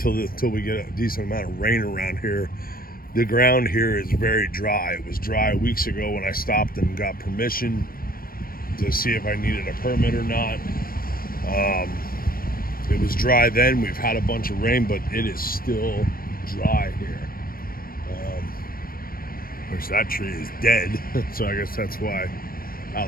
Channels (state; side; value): late; right; 0.42 ms